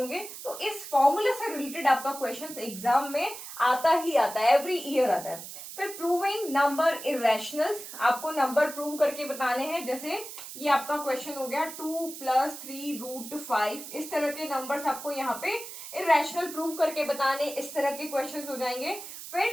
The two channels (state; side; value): noise; right; hiss, 11 dB below the sound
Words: तो इस फॉर्मूले से रिलेटेड आपका क्वेश्चन एग्जाम में आता ही आता है, एवरी ईयर आता है। फिर प्रूविंग नंबर इरेशनल्स, आपको नंबर प्रूव करके बताने हैं। जैसे ये आपका क्वेश्चन हो गया 2 + 3√5, इस तरह के नंबर्स आपको यहाँ पे इरेशनल प्रूव करके बताने, इस तरह के क्वेश्चंस हो जाएंगे। फिर